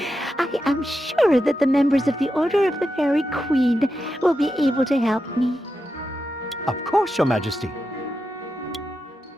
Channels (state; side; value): normal; both; correlation 0.88